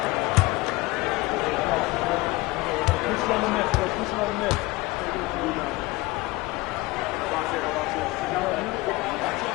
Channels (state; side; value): quieter; right; 21.3 dB